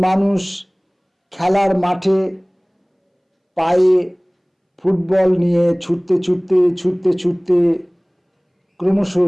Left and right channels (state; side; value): identical; both; correlation 1.00